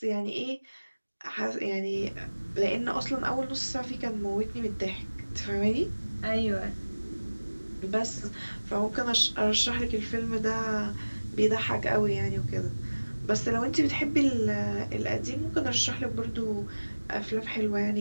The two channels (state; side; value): inverted; both; correlation -1.00